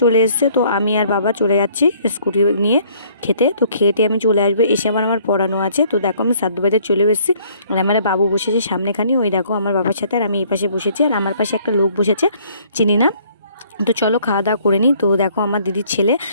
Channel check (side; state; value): both; inverted; correlation -0.61